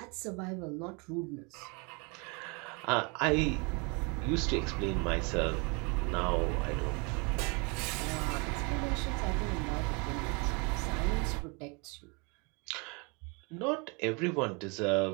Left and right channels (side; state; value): left; quieter; 31.3 dB